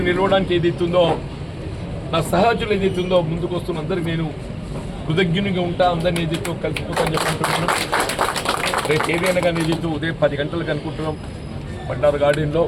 నిలవడానికి ఏదైతుందో నా సహచరులు ఏదైతుందో ముందుకు వస్తున్న అందరికి నేను కృతజ్ఞునిగా ఉంటా. అందరినీ ఏదైతే కలిసిపోతాను చెప్పుకుంటున్నాను. రేపు ఏదైనా కానీ ఏదైతే ఉదయం 10 గంటలకు అనుకుంటున్నాం బండారు గార్డెన్లో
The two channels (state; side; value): identical; both; correlation 1.00